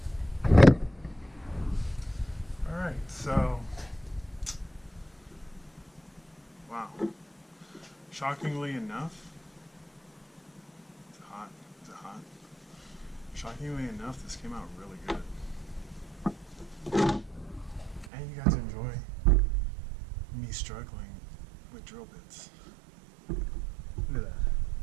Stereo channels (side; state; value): left; drops out; at 18.1 s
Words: Alright, so, wow. Shockingly enough, is it hot? Is it hot? Shockingly enough, this came out really good. And you got to enjoy me struggling with drill bits. Look at that.